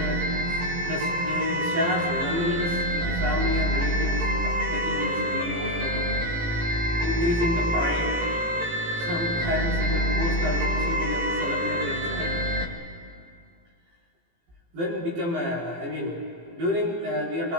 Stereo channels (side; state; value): left; late; 18 ms